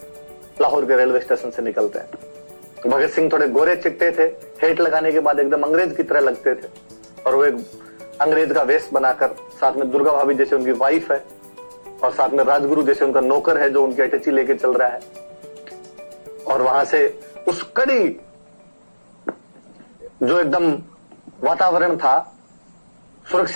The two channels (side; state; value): both; inverted; correlation -1.00